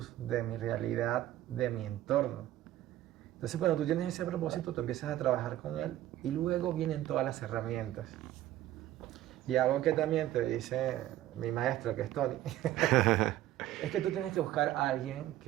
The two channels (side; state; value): left; quieter; 13.9 dB